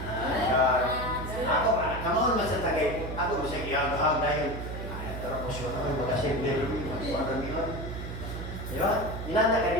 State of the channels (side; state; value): right; noise; hum, 7 dB below the sound